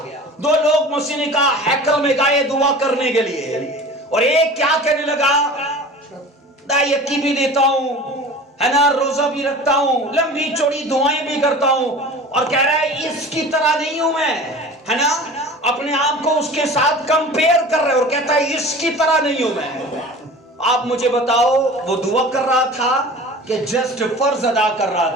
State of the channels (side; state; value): both; normal; correlation 0.39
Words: दो लोग मसीह ने कहा हैकल में गए दुआ करने के लिए, और एक क्या कहने लगा, यकी भी देता हूं, है ना, रोजा भी रखता हूं, लंबी चौड़ी दुआएं भी करता हूं, और कह रहा है इसकी तरह नहीं हूं मैं, है ना, अपने आप को उसके साथ कंपेयर कर रहे, और कहता है इसकी तरह नहीं हूं मैं। आप मुझे बताओ, वो दुआ कर रहा था कि जस्ट फर्ज अदा कर रहा